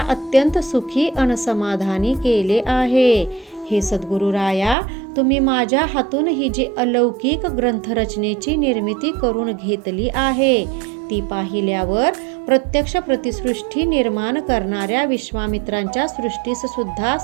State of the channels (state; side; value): drops out; left; at 4.8 s